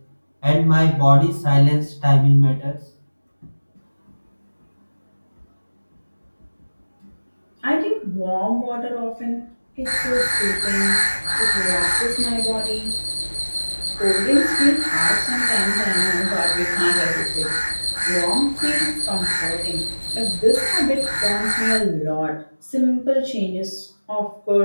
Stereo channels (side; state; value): both; inverted; correlation -1.00